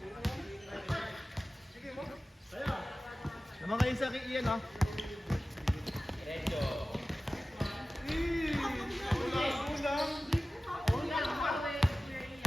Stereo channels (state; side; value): normal; both; correlation 0.96